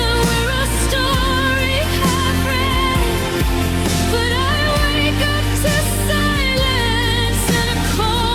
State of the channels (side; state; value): both; identical; correlation 1.00